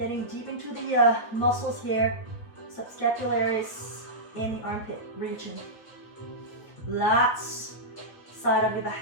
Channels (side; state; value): right; late; 9.0 ms